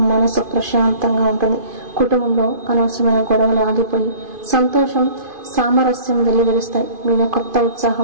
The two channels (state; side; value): late; left; 2.5 ms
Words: మనసు ప్రశాంతంగా ఉంటుంది. కుటుంబంలో అనవసరమైన గొడవలు ఆగిపోయి సంతోషం, సామరస్యం వెల్లివిరుస్తాయి. మీలో కొత్త